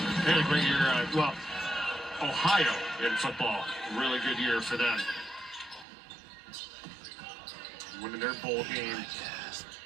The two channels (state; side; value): drops out; left; at 5.9 s